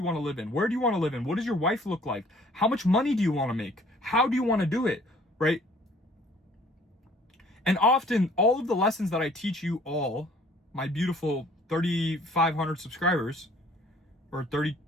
want to live in? Where do you want to live in? What does your wife look like? How much money do you want to make? How do you want to do it, right? And often, all of the lessons that I teach you all, my beautiful 3,500 subscribers, or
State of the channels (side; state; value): both; normal; correlation 0.56